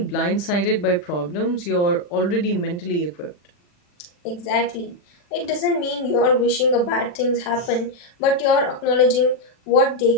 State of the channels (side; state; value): right; late; 40 ms